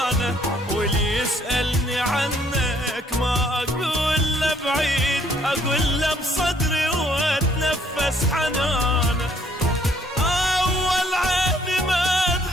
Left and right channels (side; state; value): both; normal; correlation 0.65